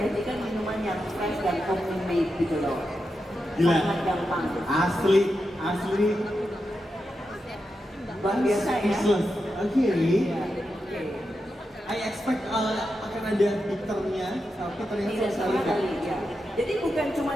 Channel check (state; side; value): normal; both; correlation 0.88